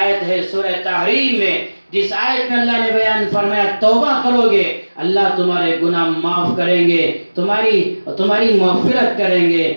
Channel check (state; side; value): inverted; both; correlation -1.00